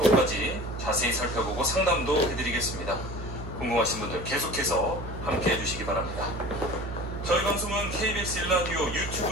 자세히 살펴보고 상담도 해드리겠습니다. 궁금하신 분들 계속해서 함께 해주시기 바랍니다. 저희 방송은 KBS 1라디오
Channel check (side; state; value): right; noise; hum, 9 dB below the sound